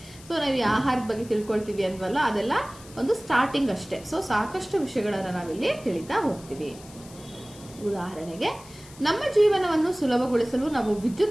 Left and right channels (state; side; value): noise; left; hiss, 20 dB below the sound